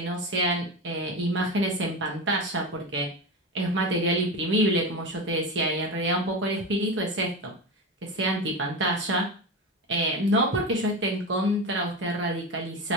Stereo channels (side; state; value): both; normal; correlation 0.21